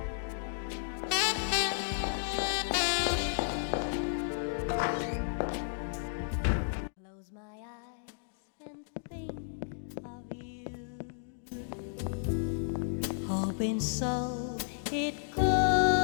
Hoping so it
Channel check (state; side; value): silent; right; digital silence